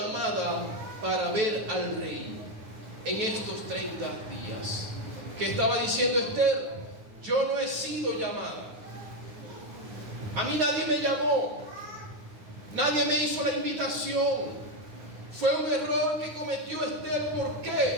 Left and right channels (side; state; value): left; late; 9.7 ms